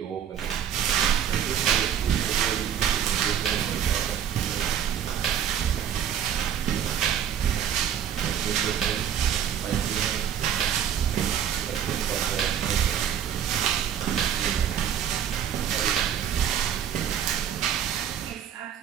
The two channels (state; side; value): quieter; left; 9.2 dB